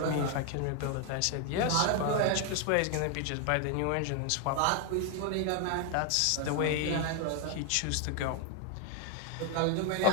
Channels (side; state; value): both; different; correlation 0.01